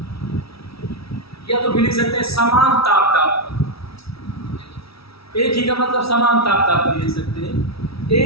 या तो भी लिख सकते हैं समान ताप पर, एक ही का मतलब समान ताप पर लिख सकते हैं,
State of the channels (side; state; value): right; late; 0.76 ms